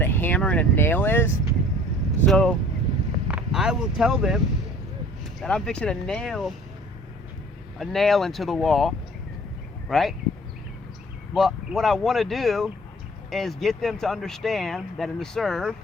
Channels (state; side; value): normal; both; correlation 0.50